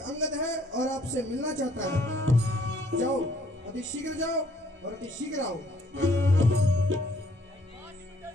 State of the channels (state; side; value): normal; both; correlation 0.63